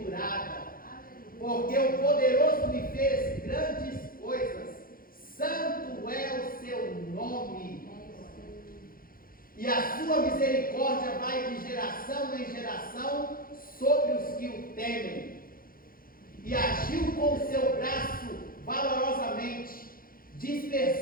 porque o poderoso me fez grandes coisas, santo é o seu nome, e a sua misericórdia vai de geração em geração sobre os que o temem. E agiu com o seu braço valorosamente,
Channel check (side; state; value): right; late; 0.42 ms